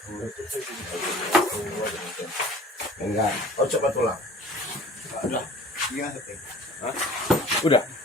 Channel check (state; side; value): normal; both; correlation 0.47